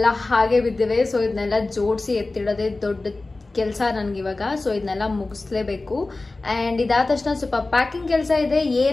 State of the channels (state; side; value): quieter; right; 3.2 dB